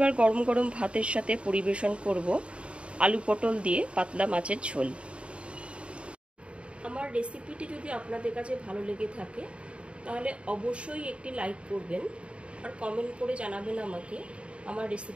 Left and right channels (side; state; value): left; late; 0.059 ms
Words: গরম গরম ভাতের সাথে পরিবেশন করব আলু পটল দিয়ে পাতলা মাছের ঝোল। আমার রেসিপিটি যদি আপনাদের কাছে ভালো লেগে থাকে তাহলে অবশ্যই একটি লাইক করবেন আর কমেন্ট করে জানাবেন আমাকে আমার